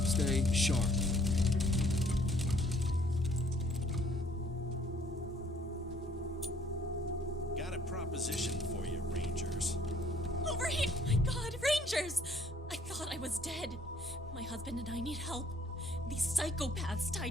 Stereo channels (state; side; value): normal; both; correlation 0.61